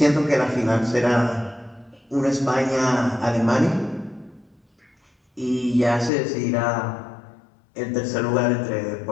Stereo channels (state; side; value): drops out; right; at 6.1 s